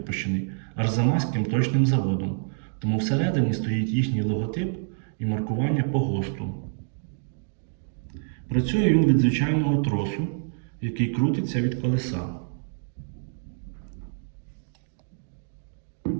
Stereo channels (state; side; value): silent; left; digital silence